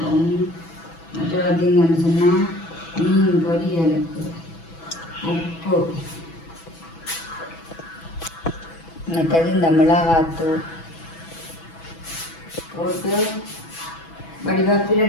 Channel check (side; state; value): right; late; 6.1 ms